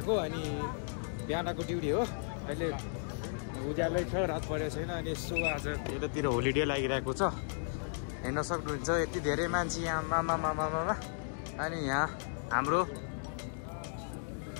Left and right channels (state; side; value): silent; right; digital silence